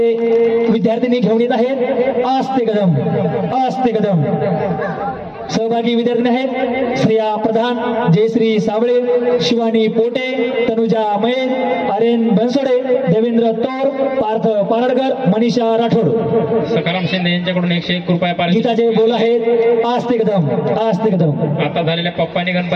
विद्यार्थ्यांनी घेऊन येत आहेत आस्ते कदम आस्ते कदम. सहभागी विद्यार्थी आहेत श्रेया प्रधान, जयश्री साबळे, शिवानी पोटे, तनुजा मयेन, आर्यन बनसोडे, देवेंद्र तोर, पार्थ पारडकर, मनीषा राठोड. सकाराम शिंदे यांच्याकडून 101 रुपये पारितोषिक. गीताचे बोल आहेत आस्ते कदम आस्ते कदम. आता झालेल्या पप्पानी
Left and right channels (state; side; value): identical; both; correlation 1.00